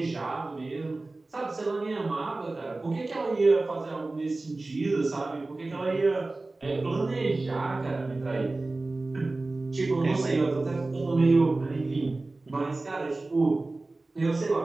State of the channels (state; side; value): quieter; left; 3.2 dB